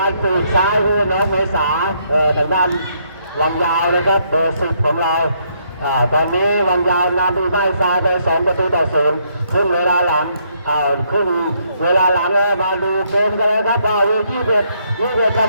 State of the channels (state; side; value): inverted; both; correlation -0.72